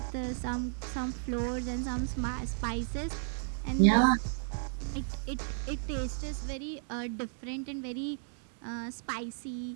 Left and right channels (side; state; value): left; silent; digital silence